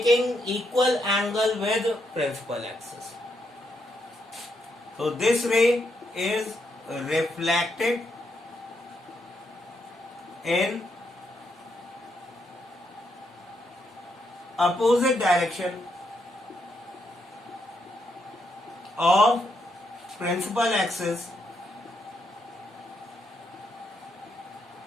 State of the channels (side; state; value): both; normal; correlation 0.78